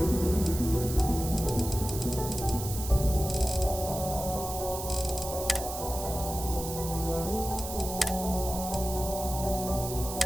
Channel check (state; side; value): noise; right; hiss, 8 dB below the sound